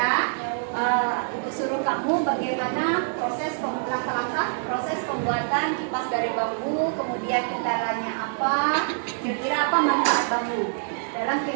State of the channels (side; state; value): left; silent; digital silence